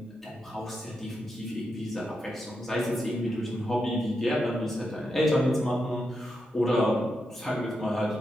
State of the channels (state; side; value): normal; both; correlation 0.85